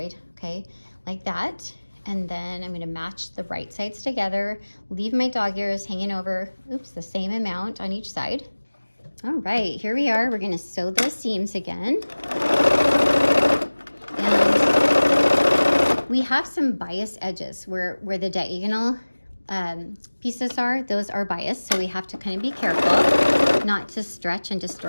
okay? Like that. And then I'm gonna match the right sides together, leave my dog ears hanging over, oops, the same amount on each side. All right, here we are. We're gonna sew those seams again. And we have some bias edges where the diagonal pieces are, those are biased, so we have to kind of be careful not to stretch and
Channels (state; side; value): inverted; both; correlation -1.00